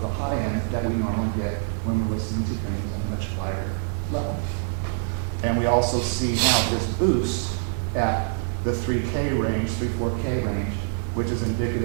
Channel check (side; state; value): left; silent; digital silence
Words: the high end that we normally get when we're listening to things at a much higher level. And we also see now this boost at the 3K range, 3-4K range, which is